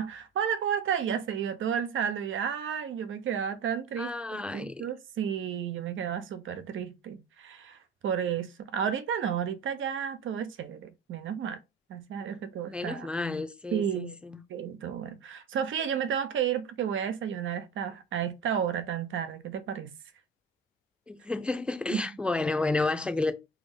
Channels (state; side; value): quieter; left; 4.5 dB